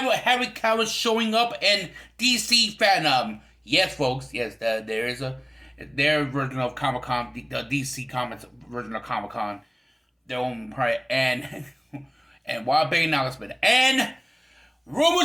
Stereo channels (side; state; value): both; identical; correlation 1.00